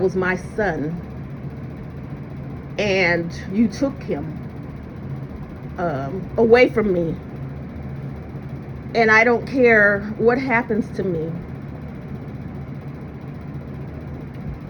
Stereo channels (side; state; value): both; identical; correlation 1.00